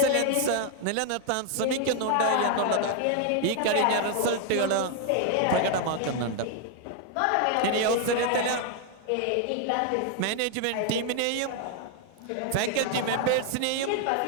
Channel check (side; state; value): both; different; correlation 0.00